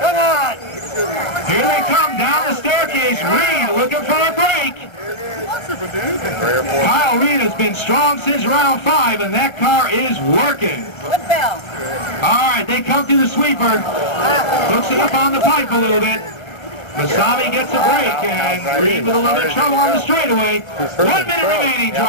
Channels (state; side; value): late; right; 1.5 ms